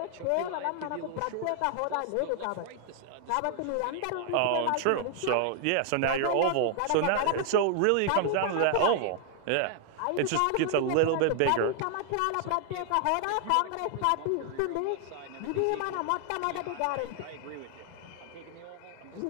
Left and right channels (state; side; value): different; both; correlation 0.00